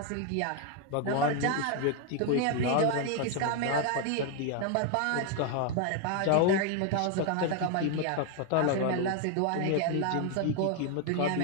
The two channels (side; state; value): both; different; correlation 0.01